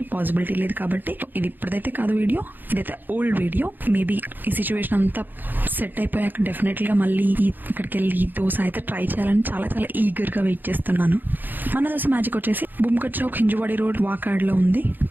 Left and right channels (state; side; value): late; left; 0.089 ms